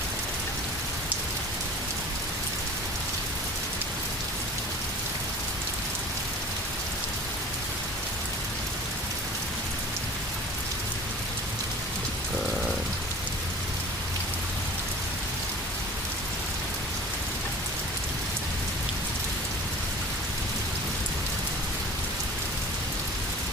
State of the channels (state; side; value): normal; both; correlation 0.41